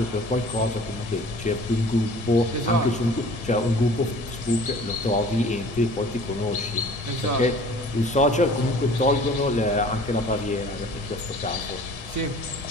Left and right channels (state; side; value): normal; both; correlation 0.48